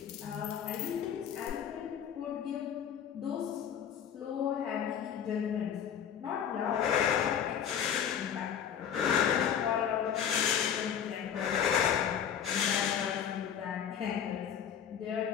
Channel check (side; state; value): right; quieter; 8.6 dB